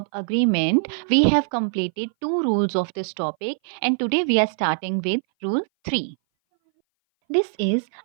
agreement. We have completed two rules of this topic and today we are starting with rule 3. This is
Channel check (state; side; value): silent; left; 60 dB below the other